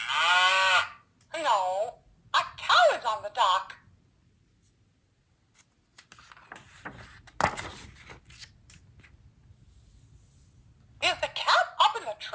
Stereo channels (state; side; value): identical; both; correlation 1.00